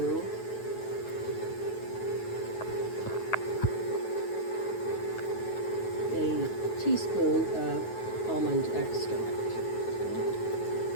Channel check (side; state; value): right; late; 9.3 ms